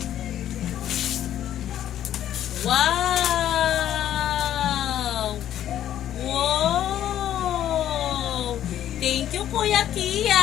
Wow! Wow! Thank you, Kuya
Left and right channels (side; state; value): right; quieter; 11.4 dB